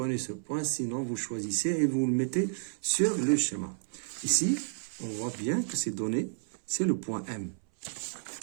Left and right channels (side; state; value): left; silent; 57 dB below the other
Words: ce point, sinon vous choisissez et vous le mettez sur le schéma. Ici, on voit bien que c'est donné, c'est le point M.